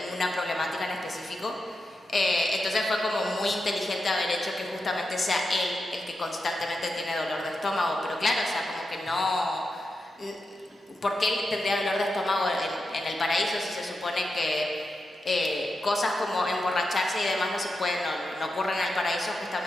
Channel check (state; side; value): normal; both; correlation 0.88